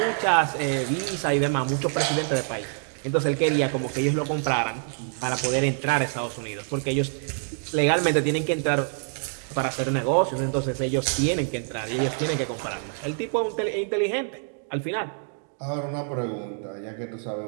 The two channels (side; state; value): left; silent; 59 dB below the other